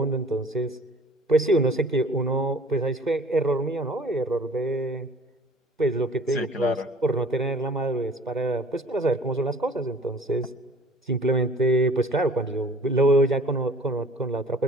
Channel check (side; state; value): both; normal; correlation 0.50